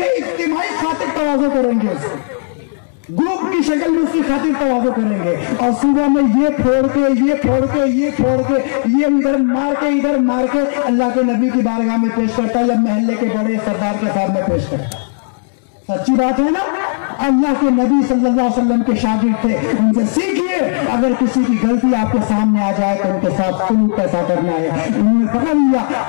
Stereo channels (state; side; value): silent; right; digital silence